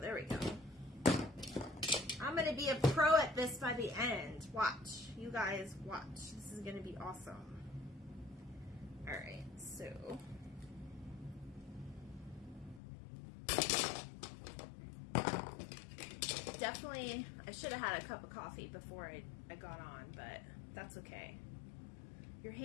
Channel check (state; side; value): drops out; right; at 12.8 s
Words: there we go. I'm going to be a pro at this by the end. Watch. You guys watch. This is going to be awesome. Alright, so. Definitely, I should have had a cup of coffee before I got on, but that's okay. Your